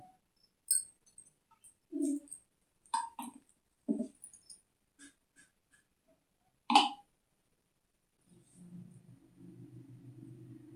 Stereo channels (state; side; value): identical; both; correlation 1.00